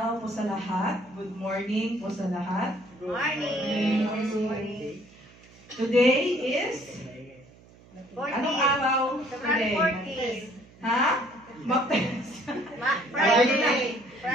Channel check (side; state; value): right; noise; hum, 25 dB below the sound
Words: po sa lahat. Good morning po sa lahat. Good morning. Today is anong araw? February 14. Ha? Friday.